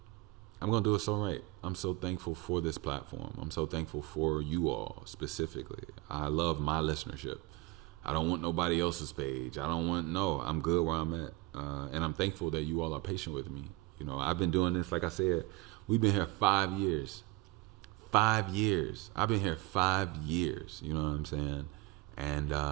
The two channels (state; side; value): quieter; left; 19.0 dB